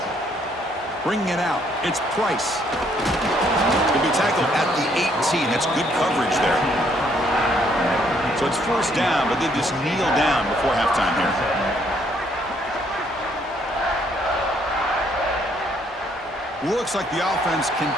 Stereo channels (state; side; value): normal; both; correlation 0.68